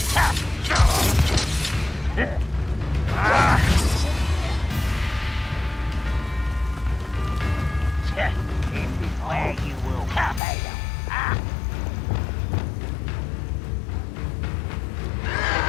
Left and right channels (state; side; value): drops out; right; at 10.4 s